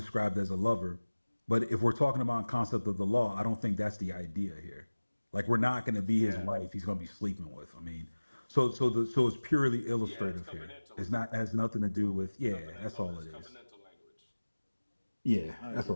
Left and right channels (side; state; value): both; inverted; correlation -1.00